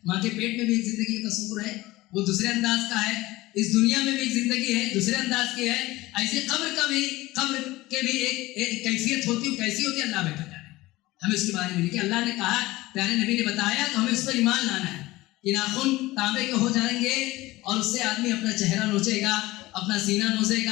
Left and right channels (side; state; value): right; quieter; 19.0 dB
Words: ماں کے پیٹ میں بھی ایک زندگی کا تصور ہے، وہ دوسرے انداز کا ہے۔ اس دنیا میں بھی ایک زندگی ہے، دوسرے انداز کی ہے۔ ایسے قبر کے بھی ایک کیفیت ہوتی ہے، کیسی ہوتی ہے اللہ بہتر جانے۔ ہمیں اس کے بارے میں لکھے، اللہ نے کہا، پیارے نبی نے بتایا، تو ہمیں اس پر ایمان لانا ہے کہ ناخن تانبے کے ہو جائیں گے اور اس سے آدمی اپنا چہرہ نوچے گا، اپنا سینہ